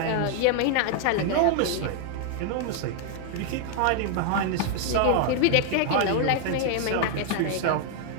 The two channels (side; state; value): both; different; correlation 0.00